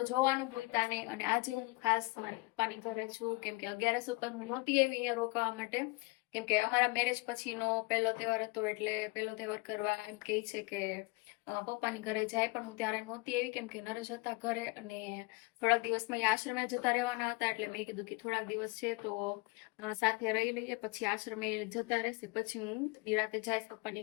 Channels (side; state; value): right; quieter; 25.5 dB